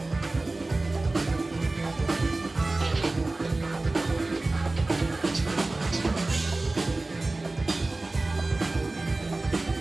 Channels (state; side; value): quieter; left; 3.1 dB